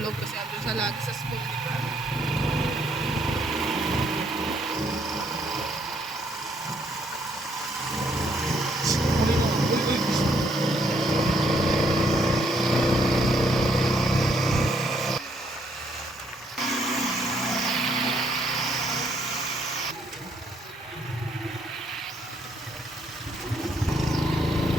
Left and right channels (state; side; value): normal; both; correlation 0.70